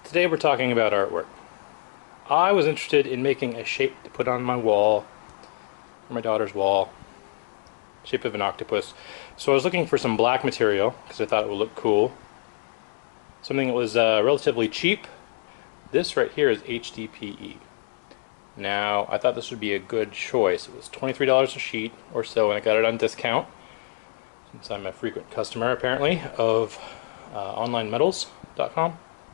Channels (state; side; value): silent; right; digital silence